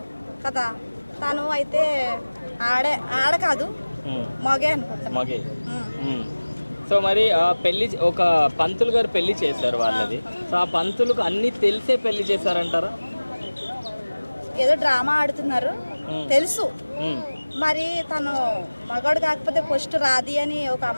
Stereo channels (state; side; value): inverted; both; correlation -1.00